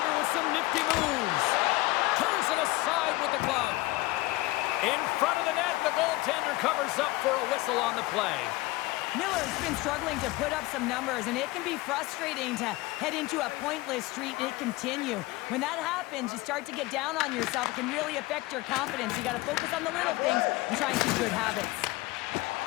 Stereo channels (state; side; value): quieter; right; 20.4 dB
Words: with some nifty moves. Turns it aside with the glove. In front of the net, the goaltender covers up for a whistle on the play. Miller's been struggling to put up some numbers, and it can be frustrating to head into a pointless streak and continue. When that happens, you start to get down on yourself. It can really affect your confidence. You got to focus on the little things and try and keep good habits.